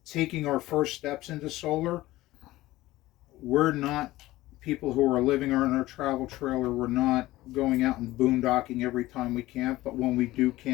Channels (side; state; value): right; quieter; 17.3 dB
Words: taking our first steps into solar. We're not people who are living in our travel trailer. We're not going out and boondocking every time we camp. But when we do